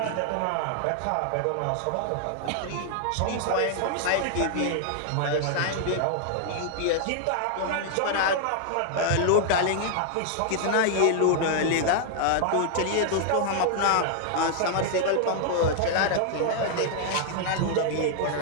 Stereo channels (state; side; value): different; both; correlation 0.00